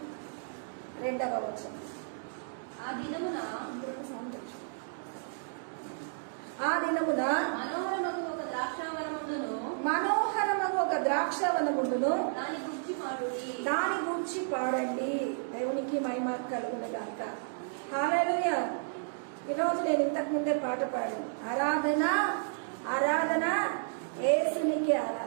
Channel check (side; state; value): left; silent; digital silence